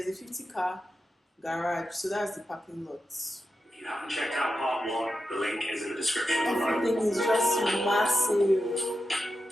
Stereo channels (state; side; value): normal; both; correlation 0.89